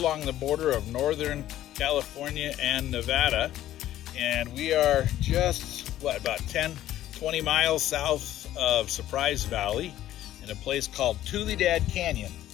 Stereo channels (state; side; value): quieter; right; 13.2 dB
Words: the border of Northern California and Nevada, and we are just, about 10-20 miles south of Surprise Valley in a place called Tuledad Canyon.